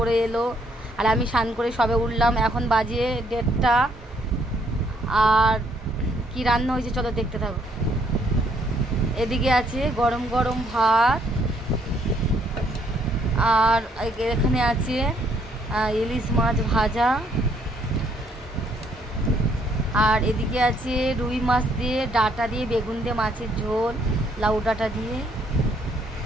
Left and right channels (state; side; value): normal; both; correlation 0.68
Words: এলো আর আমি স্নান করে সবে উঠলাম। এখন বাজে 1:30। আর কি রান্না হয়েছে চলো দেখতে থাকো। এদিকে আছে গরম গরম ভাত, আর এখানে আছে ইলিশ মাছ ভাজা, আর এদিকে আছে রুই মাছ দিয়ে ডাঁটা দিয়ে বেগুন দিয়ে মাছের ঝোল, লাউ ডাঁটা দিয়ে।